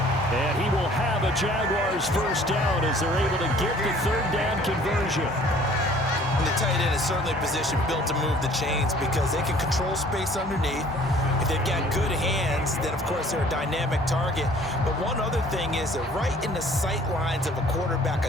And he will have a Jaguars 1st down as they're able to get the 3rd down conversion. And the tight end is certainly a position built to move the chains because they can control space underneath. If they've got good hands, then of course they're a dynamic target. But one other thing is they're right in the sight lines of a quarterback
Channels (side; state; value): both; normal; correlation 0.54